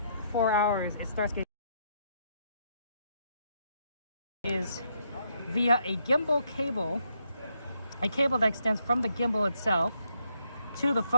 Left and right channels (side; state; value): both; inverted; correlation -0.75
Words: hours, it starts getting is via a gimbal cable, a cable that extends from the gimbal itself to the